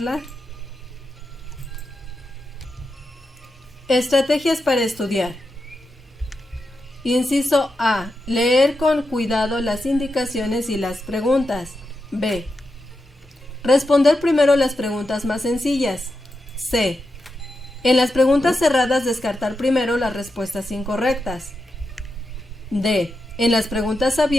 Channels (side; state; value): both; normal; correlation 0.88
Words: Estrategias para estudiar. Inciso A. Leer con cuidado las indicaciones y las preguntas. B. Responder primero las preguntas más sencillas. C. En las preguntas cerradas descartar primero las respuestas incorrectas. D. En las preguntas